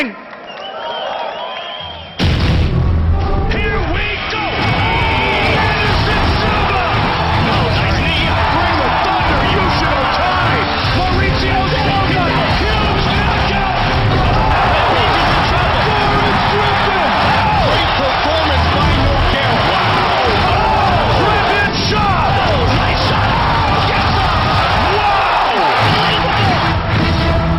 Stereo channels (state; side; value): identical; both; correlation 1.00